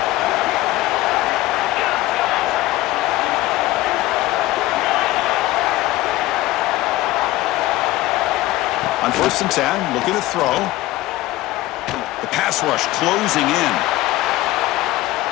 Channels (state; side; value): quieter; right; 17.3 dB